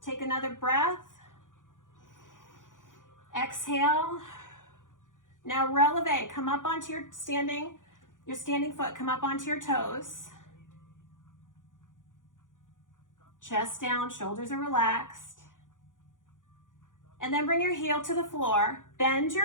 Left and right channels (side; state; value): right; late; 0.88 ms